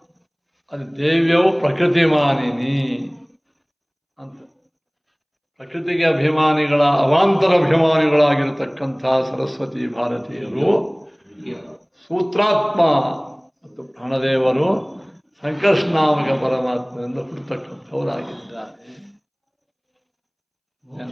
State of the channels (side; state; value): both; identical; correlation 1.00